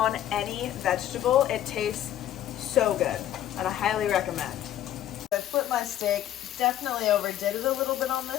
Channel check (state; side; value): quieter; right; 11.9 dB